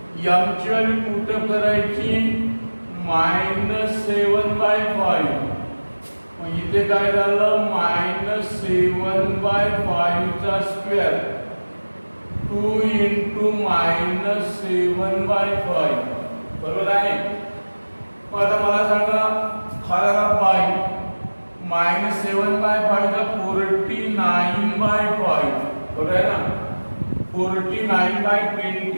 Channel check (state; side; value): inverted; both; correlation -1.00